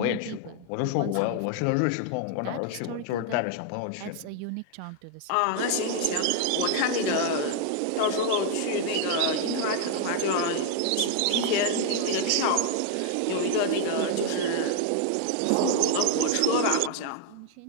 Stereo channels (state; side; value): different; both; correlation 0.00